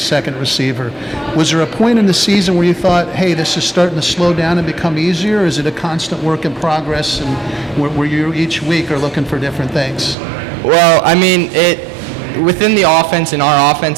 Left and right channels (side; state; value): left; drops out; at 10.2 s